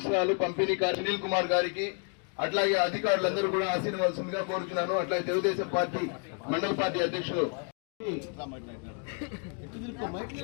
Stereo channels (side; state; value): right; quieter; 38.7 dB